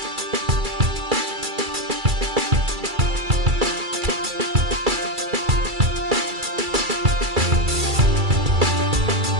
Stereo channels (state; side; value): late; left; 2.3 ms